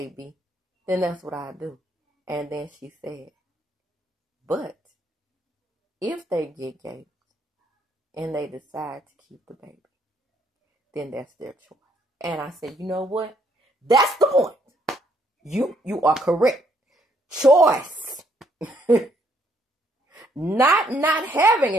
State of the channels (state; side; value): normal; both; correlation 0.69